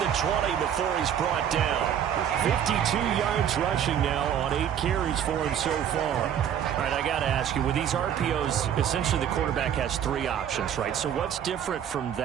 the 20 before he's brought down. 52 yards rushing now on 8 carries for him so far. All right, I got to ask you, with these RPOs, essentially the quarterback has 3 options, right? So what's different from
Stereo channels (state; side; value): quieter; left; 9.4 dB